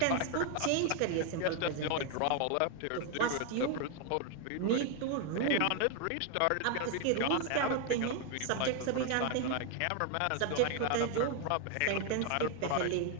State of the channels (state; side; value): different; both; correlation 0.01